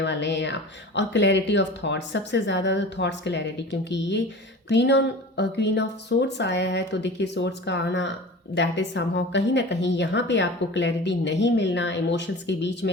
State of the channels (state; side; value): normal; both; correlation 0.37